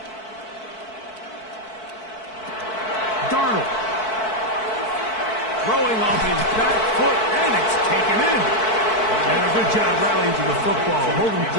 Darnold. Throwing off his back foot, and it's taken in. And a good job rallying to the football, holding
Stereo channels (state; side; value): late; right; 4.6 ms